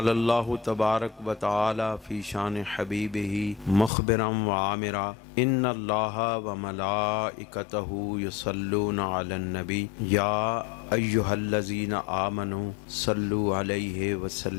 اللہ تبارک وتعالی فی شان حبیبہ مخبرا وعامرا ان اللہ وملائکتہ یصلون علی النبی یا ایہا الذین آمنوا صلوا علیہ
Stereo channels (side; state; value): right; drops out; at 3.9 s